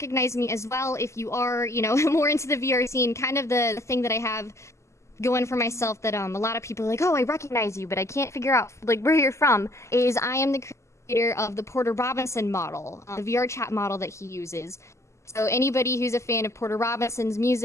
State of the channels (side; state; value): right; late; 0.13 ms